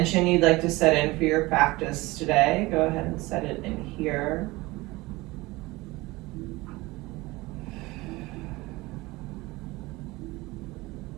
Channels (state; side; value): quieter; left; 21.2 dB